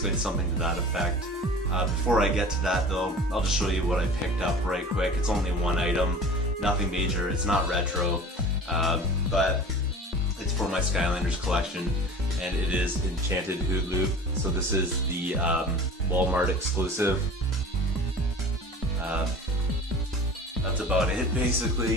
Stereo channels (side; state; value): both; normal; correlation 0.40